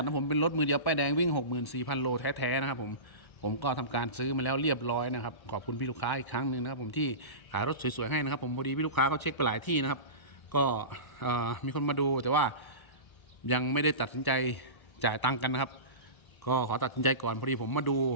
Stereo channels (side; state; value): right; late; 1.0 ms